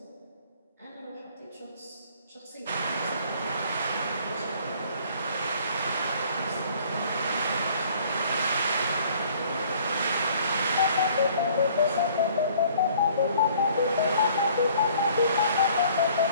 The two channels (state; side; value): inverted; both; correlation -0.56